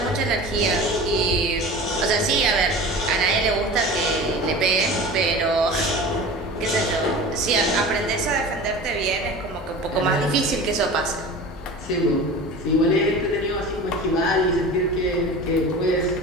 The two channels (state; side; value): normal; both; correlation 0.36